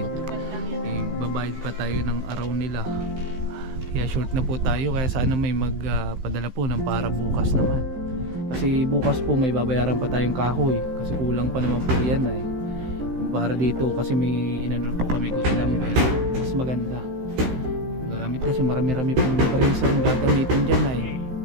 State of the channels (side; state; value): left; late; 16 ms